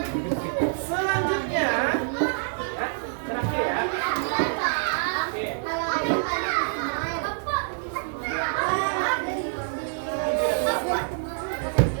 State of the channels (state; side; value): silent; left; digital silence